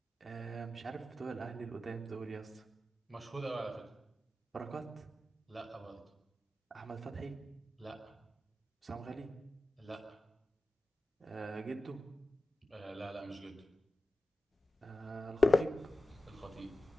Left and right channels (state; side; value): normal; both; correlation 0.93